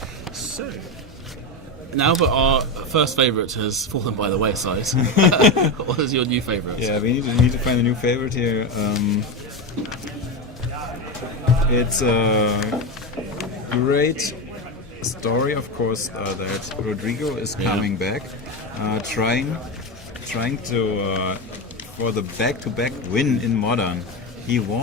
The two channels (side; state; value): both; normal; correlation 0.15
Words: So, now that our first favourite has fallen by the wayside, what is your new favourite? Yeah, we need to find a new favourite here. It's a great story, of course, that Rodrigo is coming back, trying to for the back-to-back win in Modern. He